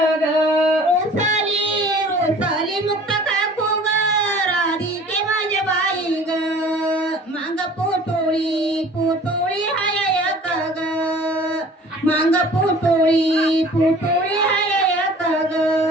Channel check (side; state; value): both; normal; correlation 0.48